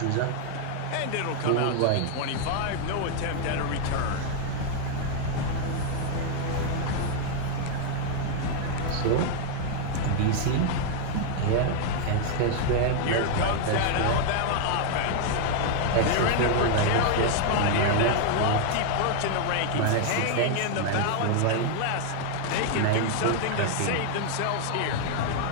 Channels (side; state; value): both; different; correlation 0.00